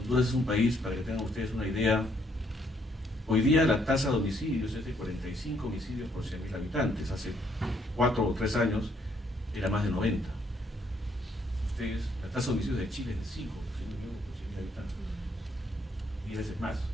es un país, para que tengan ustedes una idea, hoy día la tasa de homicidios es de 45 homicidios por 100.000 habitantes. Hace 4 o 3 años era más de 90. Ustedes, la tasa de homicidios de Chile es de 5 por 100.000 habitantes. 10 veces más.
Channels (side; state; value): both; normal; correlation 0.70